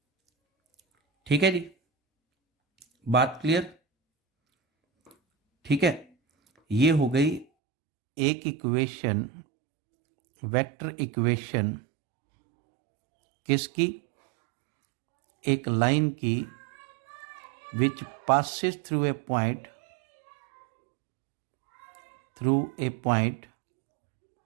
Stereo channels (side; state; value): left; drops out; at 7.5 s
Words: ठीक है जी, बात क्लियर। ठीक है, ये हो गई एक इक्वेशन, वेक्टर इक्वेशन किसकी, एक लाइन की, विच passes through a point